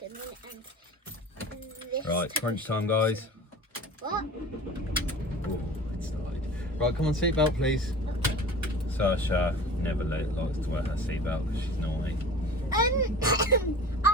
in, and this. Right, to crunch push time, them. guys. What? Oh, it started. Right, come on, seatbelt, please. Okay. Saoirse never likes to wear her seatbelt because she's naughty. I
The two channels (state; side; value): normal; both; correlation 0.39